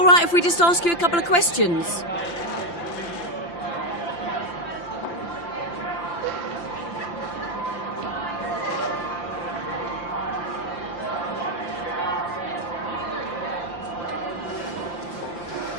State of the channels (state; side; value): late; right; 5.8 ms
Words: right if we just ask you a couple of questions?